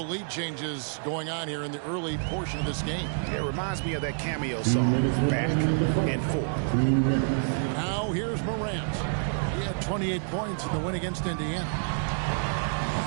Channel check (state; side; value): silent; left; 59 dB below the other